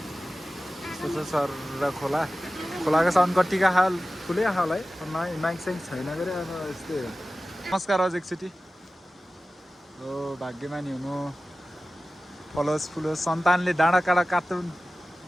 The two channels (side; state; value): both; normal; correlation 0.95